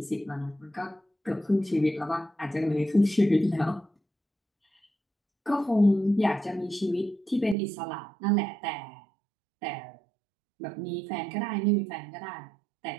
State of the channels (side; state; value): left; drops out; at 7.6 s